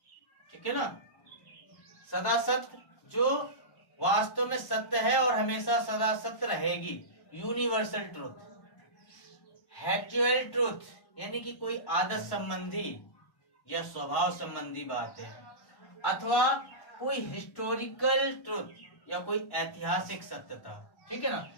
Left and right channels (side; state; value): right; late; 1.1 ms